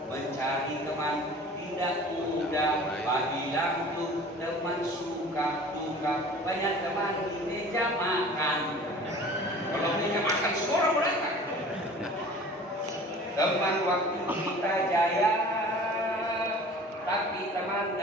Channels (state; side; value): normal; both; correlation 0.44